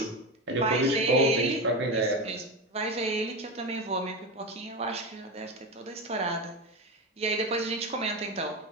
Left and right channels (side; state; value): both; normal; correlation 0.18